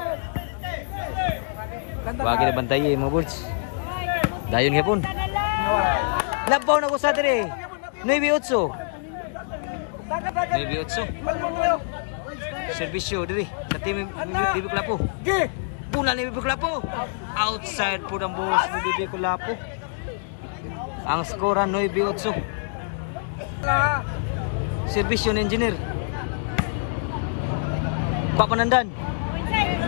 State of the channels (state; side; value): silent; right; digital silence